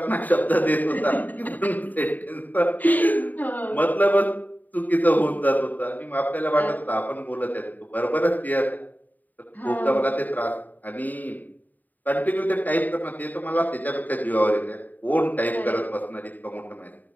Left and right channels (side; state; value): right; late; 0.084 ms